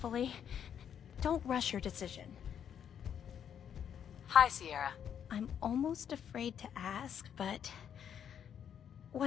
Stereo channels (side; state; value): right; quieter; 8.7 dB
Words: Don't rush your decision. Hi, Sierra. I'm almost afraid to ask, but...